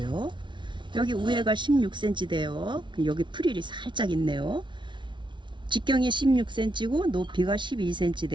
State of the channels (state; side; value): late; left; 0.24 ms